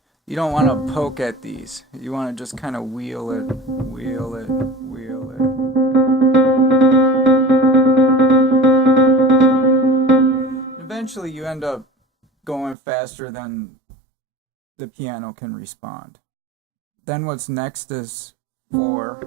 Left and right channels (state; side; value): drops out; left; at 12.8 s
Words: You don't want to poke at these. You want to just kind of wheel it, wheel it, wheel it. Eventually you end up going faster than the piano can respond. Then what's next is 4